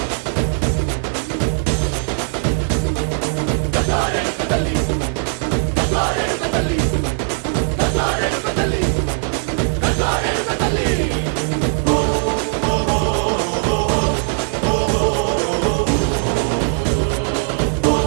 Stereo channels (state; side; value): silent; left; 60 dB below the other